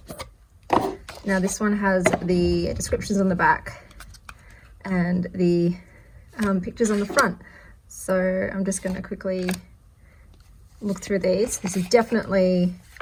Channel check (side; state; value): both; identical; correlation 1.00